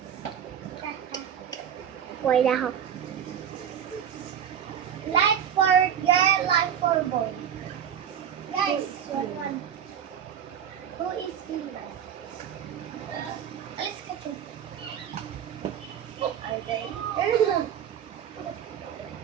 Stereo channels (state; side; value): quieter; left; 8.9 dB